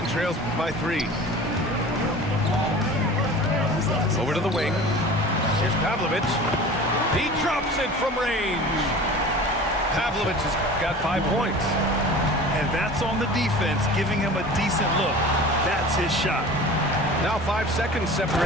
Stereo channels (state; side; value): normal; both; correlation 0.39